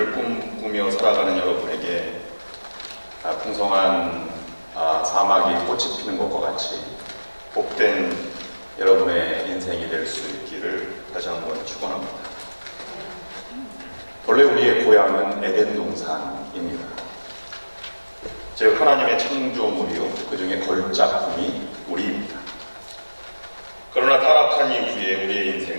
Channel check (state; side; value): inverted; both; correlation -1.00